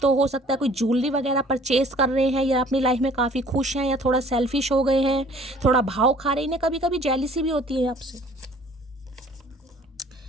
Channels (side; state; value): both; normal; correlation 0.53